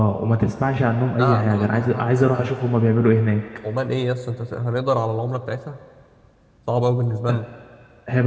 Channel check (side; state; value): both; identical; correlation 1.00